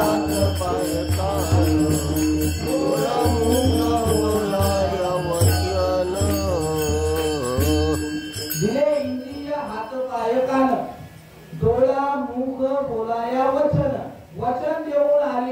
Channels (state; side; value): identical; both; correlation 1.00